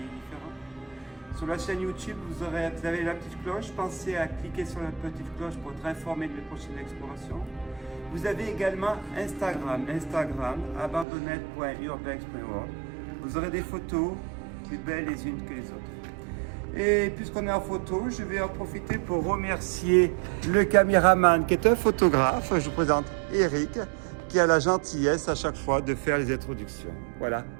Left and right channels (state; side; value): drops out; left; at 11.1 s